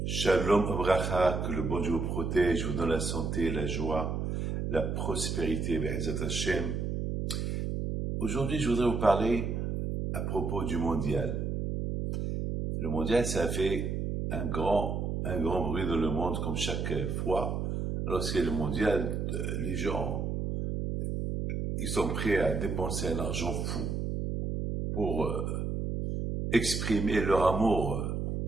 Shalom Abracha, que le bon Dieu vous protège, vous donne la santé, la joie, la prospérité, Be'ezat Hashem. Aujourd'hui, je voudrais vous parler à propos du mondial. Le mondial, ça fait un grand bruit dans le monde, comme chaque fois. Lorsqu'il y a le mondial, les gens, ils sont prêts à dépenser un argent fou pour exprimer leur amour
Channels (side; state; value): right; noise; hum, 2 dB below the sound